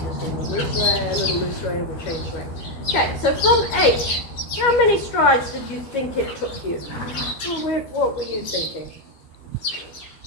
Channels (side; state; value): right; late; 13 ms